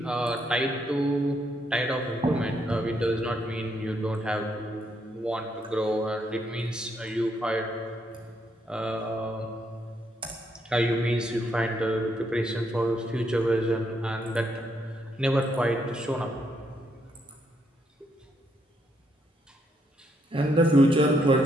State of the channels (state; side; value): normal; both; correlation 0.75